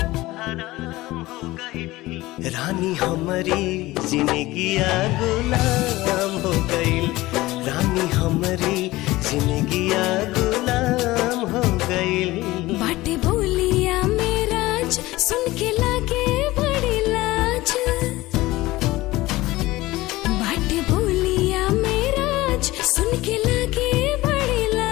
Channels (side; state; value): right; quieter; 18.7 dB